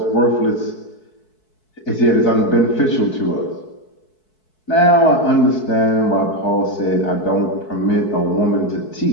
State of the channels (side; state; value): right; late; 4.6 ms